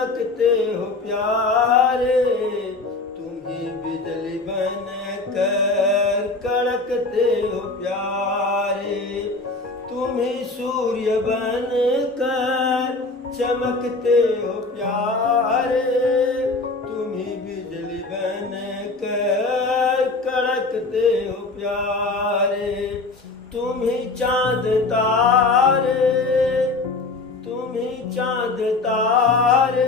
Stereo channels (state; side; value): quieter; right; 3.5 dB